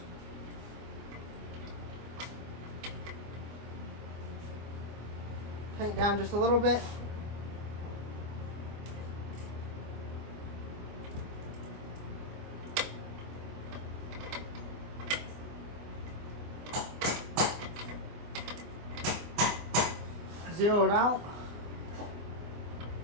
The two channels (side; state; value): left; late; 24 ms